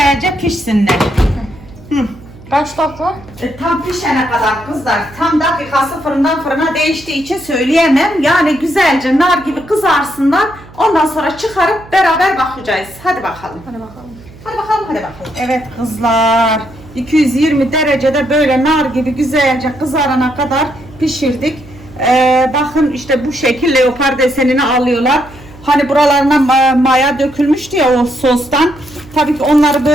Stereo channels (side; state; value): right; noise; hum, 21 dB below the sound